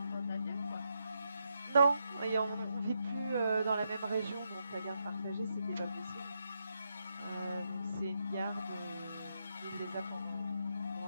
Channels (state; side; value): inverted; both; correlation -0.81